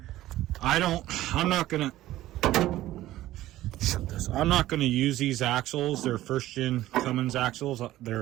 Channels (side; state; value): left; quieter; 15.1 dB